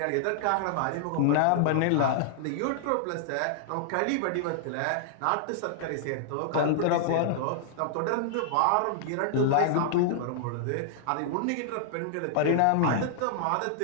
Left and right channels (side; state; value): both; different; correlation -0.01